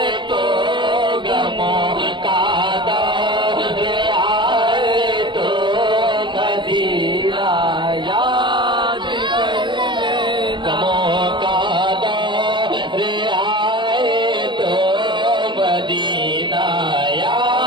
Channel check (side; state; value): left; late; 0.23 ms